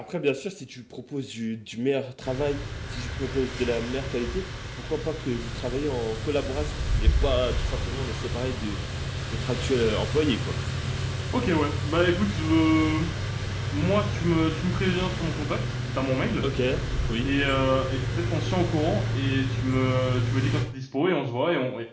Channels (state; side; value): identical; both; correlation 1.00